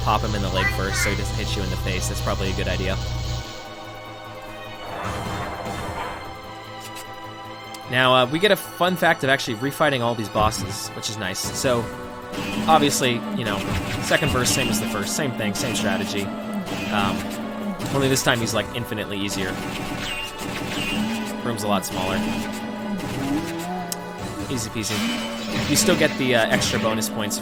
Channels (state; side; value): identical; both; correlation 1.00